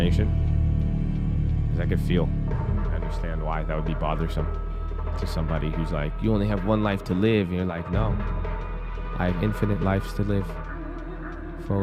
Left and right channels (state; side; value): identical; both; correlation 1.00